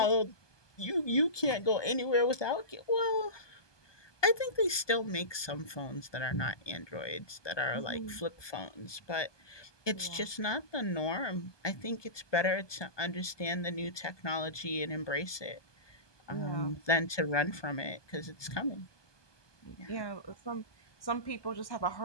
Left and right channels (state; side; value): late; right; 1.2 ms